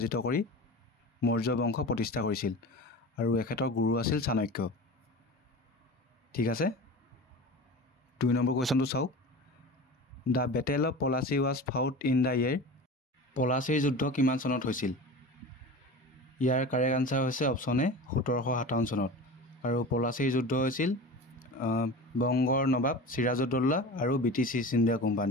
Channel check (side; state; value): both; normal; correlation 0.33